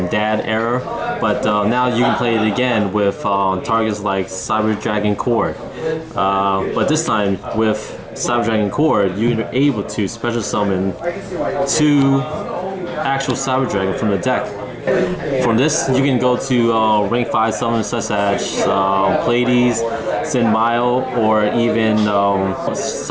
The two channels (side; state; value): both; identical; correlation 1.00